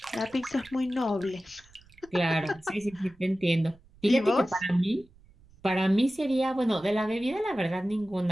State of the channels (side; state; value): right; noise; rumble, 27 dB below the sound